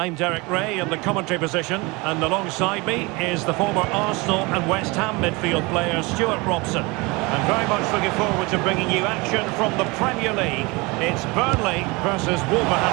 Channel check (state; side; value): quieter; left; 25.4 dB